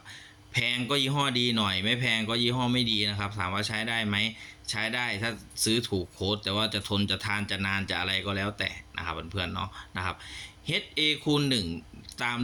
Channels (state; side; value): identical; both; correlation 1.00